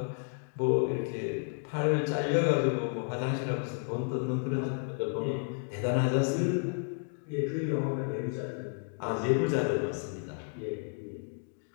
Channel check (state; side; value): silent; right; 57 dB below the other